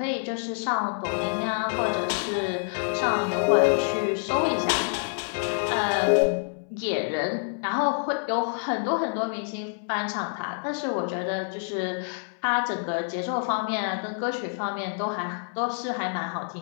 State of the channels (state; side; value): silent; right; 60 dB below the other